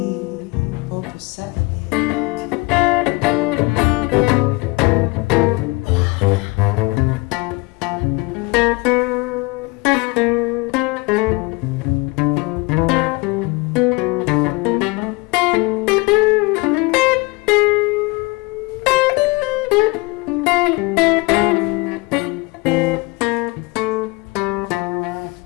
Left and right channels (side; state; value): right; quieter; 25.5 dB